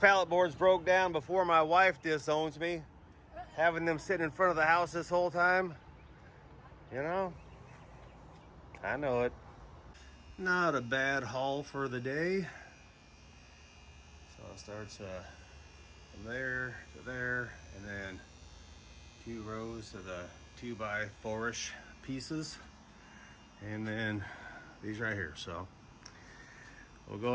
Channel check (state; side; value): identical; both; correlation 1.00